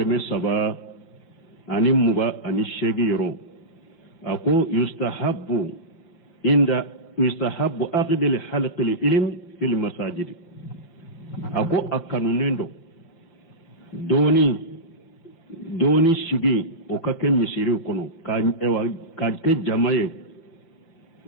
saba ani muga ani shegi yoro ako yustahabbu aqdil halqil ilm fil masajid ako akanunendo doni shigi o kake misiri kono ka ke jamaye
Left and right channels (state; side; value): late; right; 5.8 ms